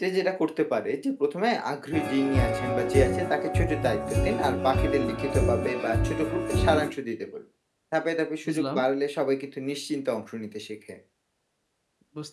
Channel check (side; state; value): both; identical; correlation 1.00